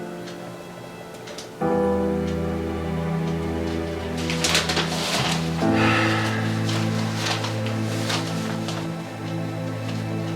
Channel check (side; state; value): both; identical; correlation 1.00